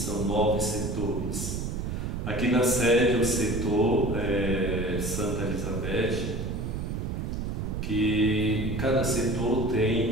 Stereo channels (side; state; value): right; noise; rumble, 3 dB below the sound